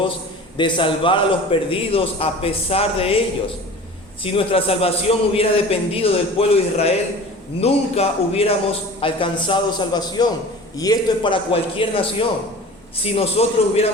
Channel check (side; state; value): both; normal; correlation 0.39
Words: de salvar a los perdidos a pesar de ellos. Si nuestra salvación hubiera dependido del pueblo de Israel, nunca hubiéramos alcanzado salvación. Y esto es para cualquier nación. Si nosotros